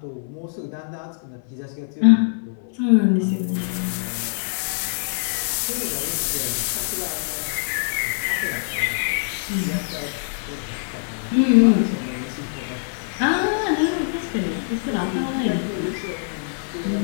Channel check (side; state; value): right; silent; 63 dB below the other